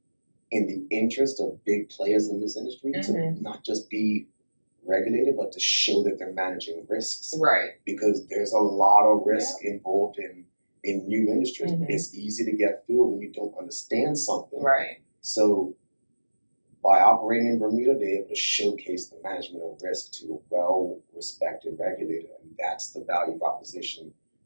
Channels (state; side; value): inverted; both; correlation -1.00